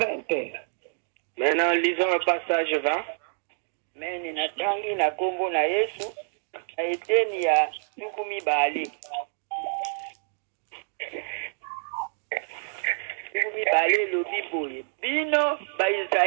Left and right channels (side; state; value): left; silent; digital silence